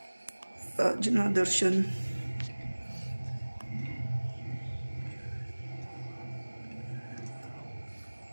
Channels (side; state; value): both; inverted; correlation -1.00